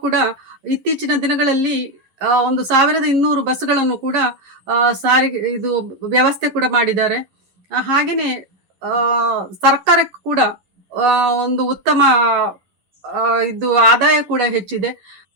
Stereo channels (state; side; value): late; left; 11 ms